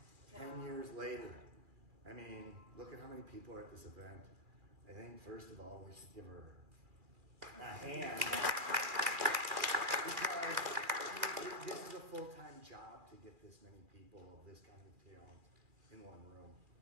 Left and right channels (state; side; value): late; left; 2.4 ms